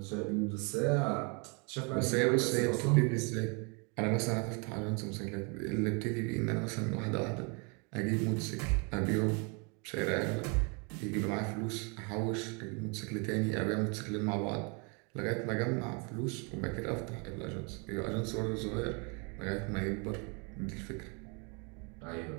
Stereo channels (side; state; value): left; quieter; 33.7 dB